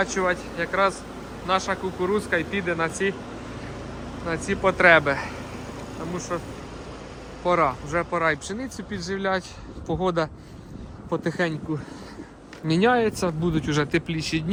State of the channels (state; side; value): identical; both; correlation 1.00